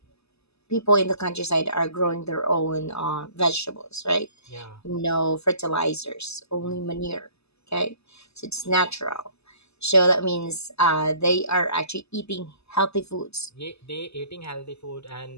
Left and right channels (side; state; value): right; late; 0.79 ms